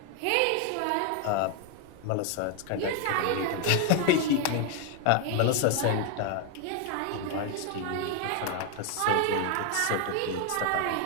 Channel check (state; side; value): different; both; correlation 0.01